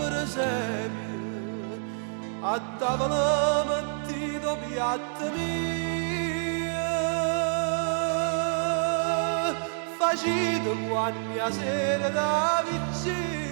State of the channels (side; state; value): left; silent; digital silence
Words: esempio, a tavola mettito piatta mia, facito guagni a sera da